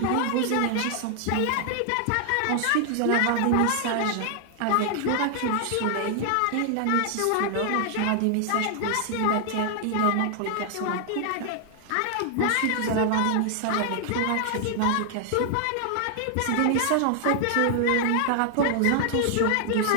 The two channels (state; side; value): different; both; correlation 0.00